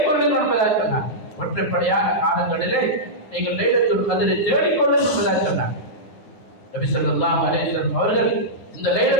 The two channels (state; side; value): late; right; 9.7 ms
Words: என்பதாக சொன்னார். ஒற்றைப்படையான காலங்களிலே நீங்கள் லைலத்துல் கத்ரை தேடிக்கொள்ளுங்கள் என்பதாக சொன்னார். நபி ஸல்லல்லாஹு அலைஹி வஸல்லம் அவர்கள் இந்த